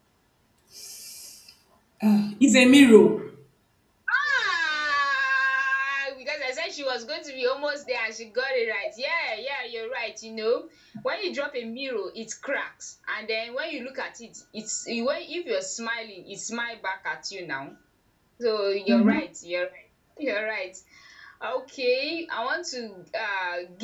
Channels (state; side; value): identical; both; correlation 1.00